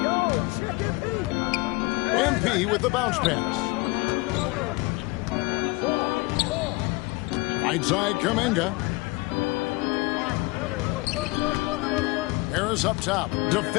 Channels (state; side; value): quieter; right; 24.3 dB